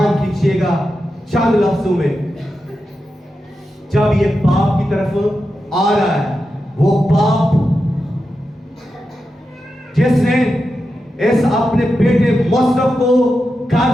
کیجئے گا چند لفظوں میں. جب یہ باپ کی طرف آ رہا ہے, وہ باپ جس نے اس اپنے بیٹے مصرف کو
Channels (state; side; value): normal; both; correlation 0.89